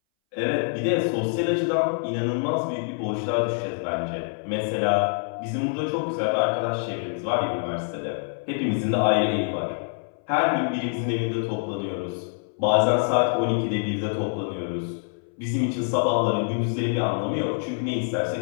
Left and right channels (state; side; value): silent; right; 60 dB below the other